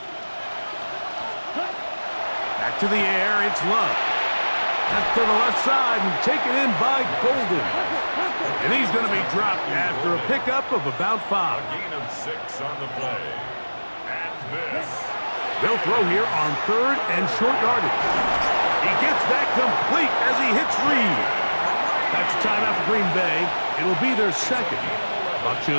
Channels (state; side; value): inverted; both; correlation -1.00